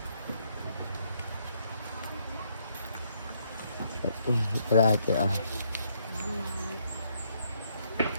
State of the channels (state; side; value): inverted; both; correlation -0.72